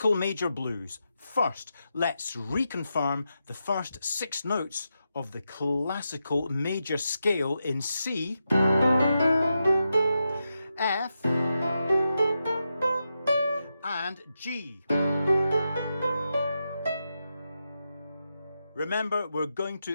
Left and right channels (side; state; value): both; inverted; correlation -0.87